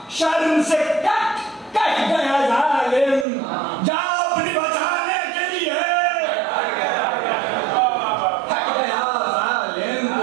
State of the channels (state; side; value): drops out; left; at 3.2 s